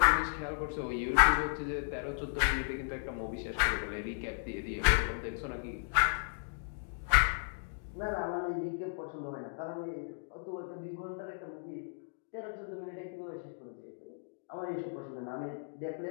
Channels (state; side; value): silent; right; digital silence